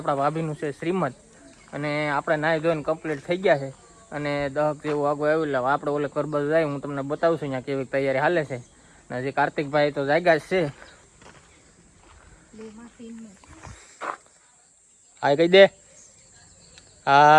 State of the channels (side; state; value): both; identical; correlation 1.00